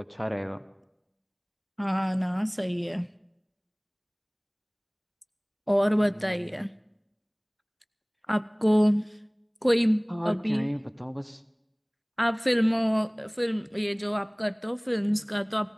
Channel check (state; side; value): identical; both; correlation 1.00